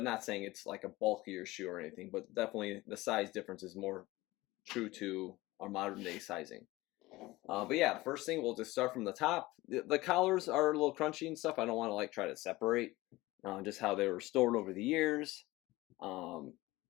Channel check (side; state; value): right; quieter; 19.4 dB